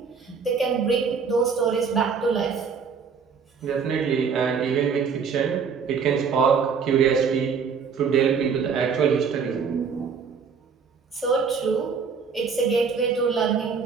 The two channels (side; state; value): left; quieter; 5.9 dB